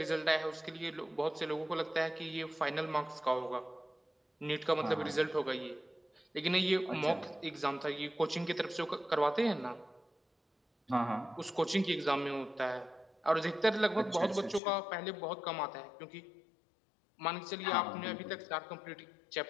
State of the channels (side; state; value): right; drops out; at 14.6 s